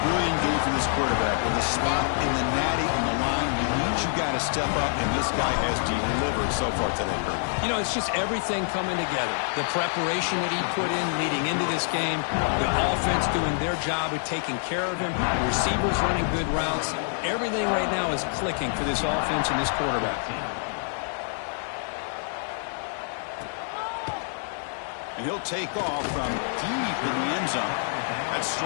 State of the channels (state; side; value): silent; right; 60 dB below the other